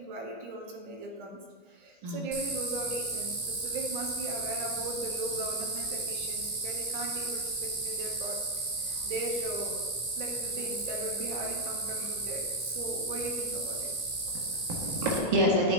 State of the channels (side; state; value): left; late; 2.1 ms